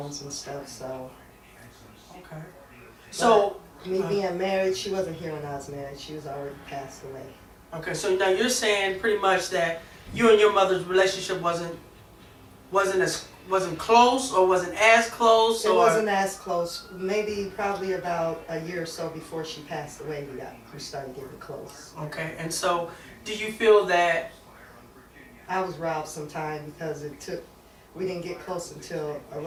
and stuff, so. Okay. So, me being married, she wasn't here when I was married. She was already passed away. Okay, so now you're saying pretty much that you and your mother's relationship wasn't close, or wasn't as close, It or wasn't as close. Maybe probably about a year or so before she passed away, we started getting close. Okay, and so do you feel that I was robbed sometime because we didn't get close until a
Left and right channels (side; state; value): both; identical; correlation 1.00